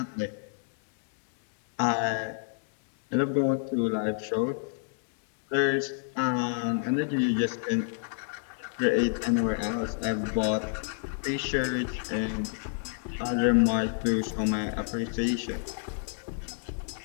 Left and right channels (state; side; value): silent; right; digital silence